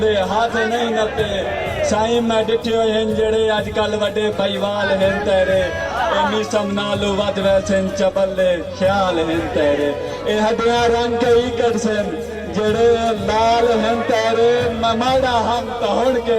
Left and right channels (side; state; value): both; identical; correlation 1.00